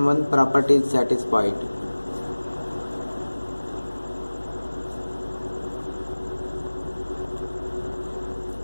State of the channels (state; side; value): inverted; both; correlation -1.00